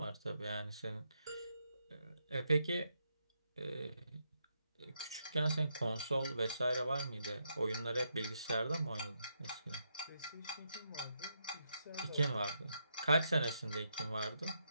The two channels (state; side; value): inverted; both; correlation -0.80